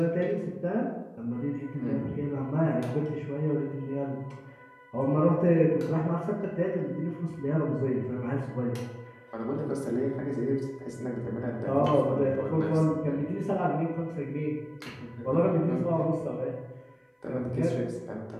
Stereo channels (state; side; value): identical; both; correlation 1.00